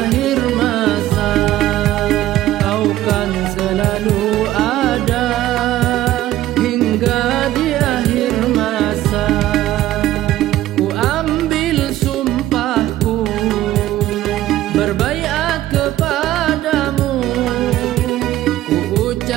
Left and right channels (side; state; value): left; quieter; 14.5 dB